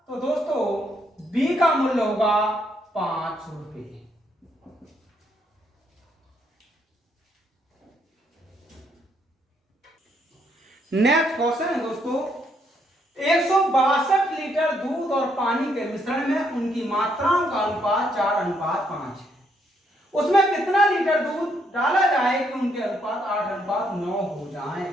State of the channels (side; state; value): both; normal; correlation 0.73